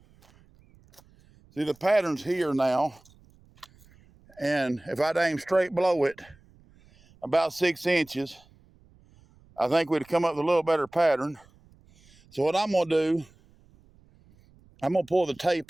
See, the pattern's here now, and if I'd aim straight below it, about 6 inches, I think we'd come up with a little better pattern. So what I'm gonna do, I'm gonna pull the tape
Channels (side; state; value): right; noise; rumble, 29 dB below the sound